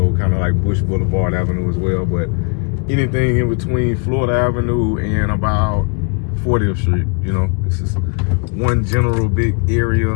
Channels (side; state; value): right; quieter; 36.9 dB